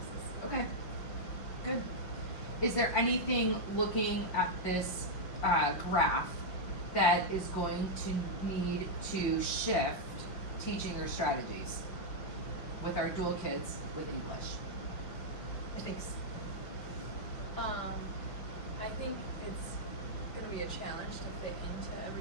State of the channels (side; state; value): right; late; 5.8 ms